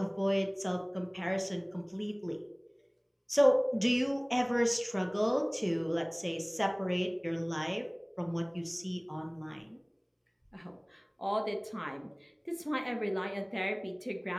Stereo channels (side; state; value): both; identical; correlation 1.00